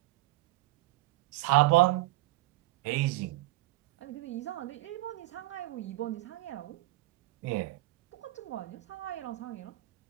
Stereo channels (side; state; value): left; quieter; 18.9 dB